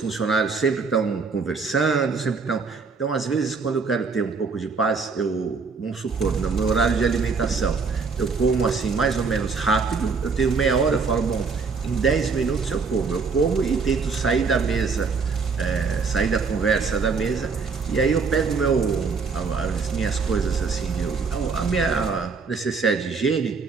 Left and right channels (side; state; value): left; quieter; 4.9 dB